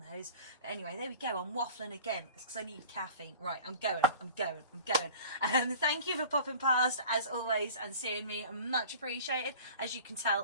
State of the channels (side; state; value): both; inverted; correlation -0.42